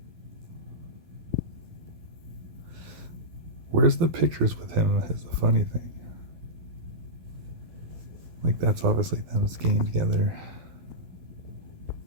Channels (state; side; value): late; left; 12 ms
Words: Where's the pictures with him is the funny thing. Like, that's obviously them skiing together.